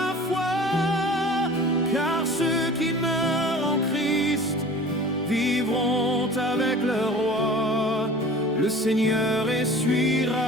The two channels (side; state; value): both; normal; correlation 0.42